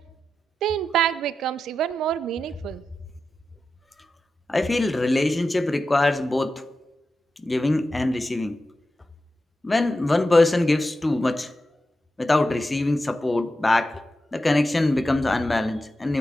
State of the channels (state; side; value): normal; both; correlation 0.90